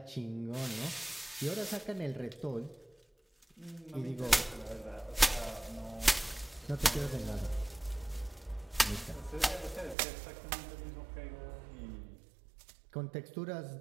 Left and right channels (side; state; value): left; drops out; at 10.0 s